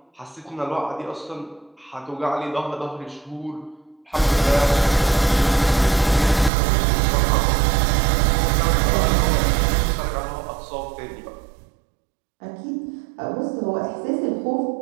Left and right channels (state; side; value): drops out; left; at 6.5 s